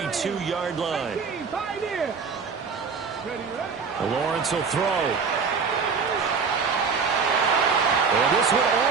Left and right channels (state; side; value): quieter; left; 5.4 dB